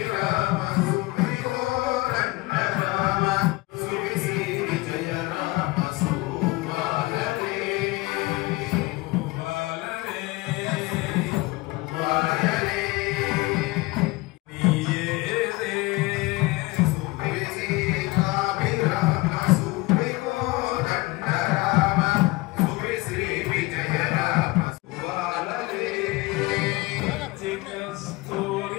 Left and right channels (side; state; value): right; quieter; 22.1 dB